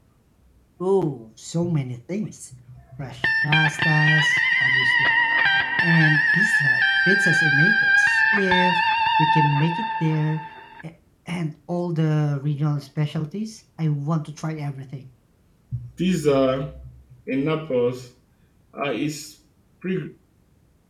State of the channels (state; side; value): identical; both; correlation 1.00